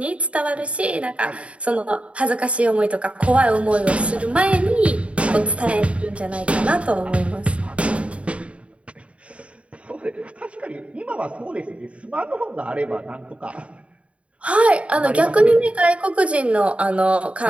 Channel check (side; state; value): left; late; 0.062 ms